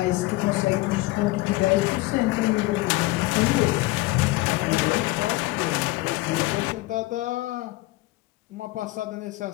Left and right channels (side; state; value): right; quieter; 20.4 dB